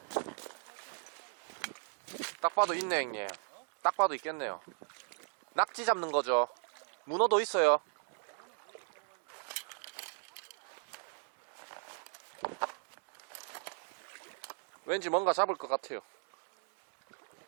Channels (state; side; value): silent; left; 53 dB below the other